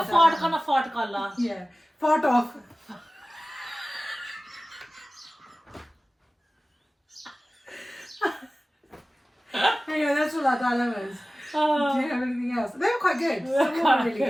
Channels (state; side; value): normal; both; correlation 0.97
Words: fart kana fart kalla. Yeah. Fart off. Anyway, that's all our dilemmas. Do you have anything else? They were quite good. Some of them were really